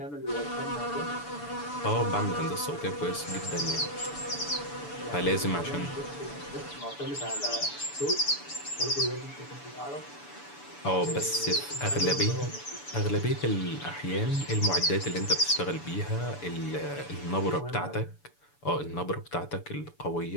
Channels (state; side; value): late; right; 6.9 ms